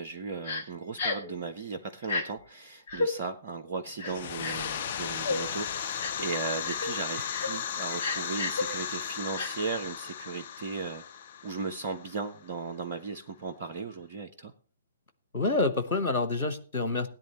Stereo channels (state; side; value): inverted; both; correlation -0.48